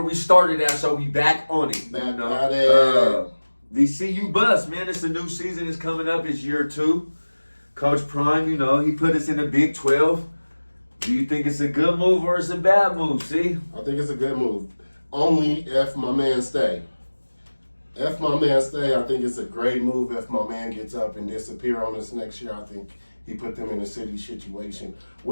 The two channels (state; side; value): inverted; both; correlation -1.00